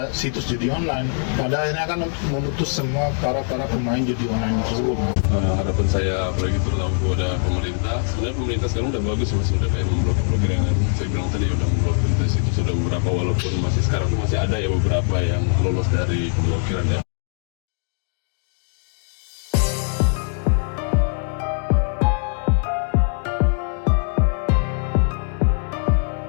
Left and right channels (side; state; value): right; silent; 64 dB below the other